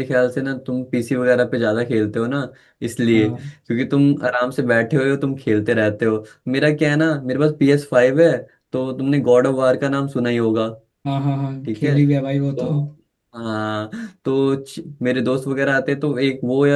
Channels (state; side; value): identical; both; correlation 1.00